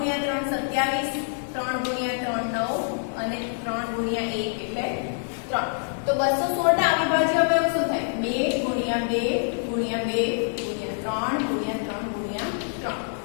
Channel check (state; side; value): silent; right; digital silence